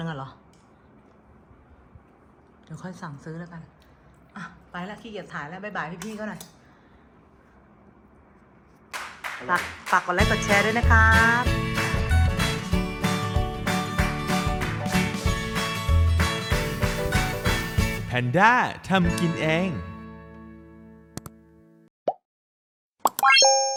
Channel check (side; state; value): both; identical; correlation 1.00